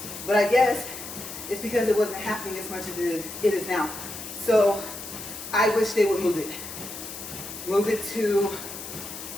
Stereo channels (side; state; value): left; noise; hiss, 10 dB below the sound